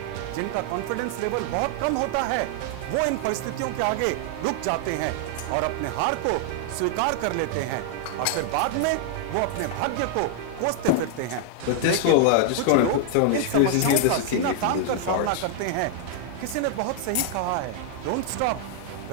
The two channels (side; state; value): both; different; correlation 0.00